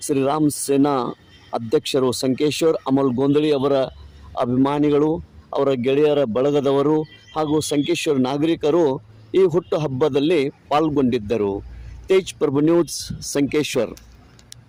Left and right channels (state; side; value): identical; both; correlation 1.00